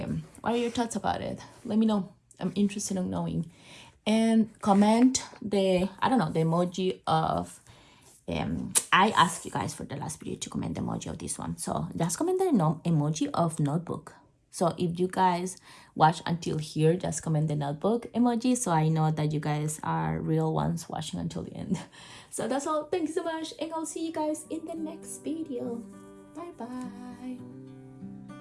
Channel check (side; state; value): both; identical; correlation 1.00